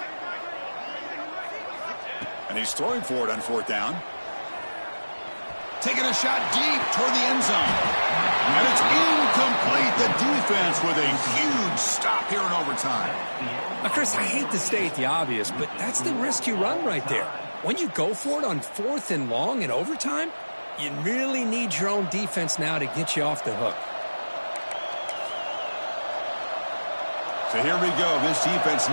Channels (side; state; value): both; inverted; correlation -1.00